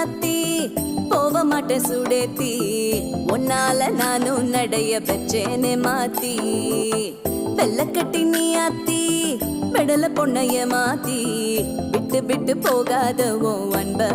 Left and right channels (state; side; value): identical; both; correlation 1.00